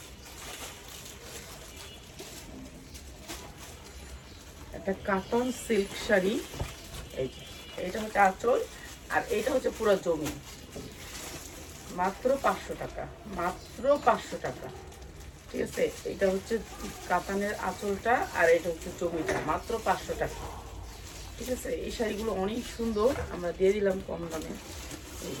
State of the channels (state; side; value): identical; both; correlation 1.00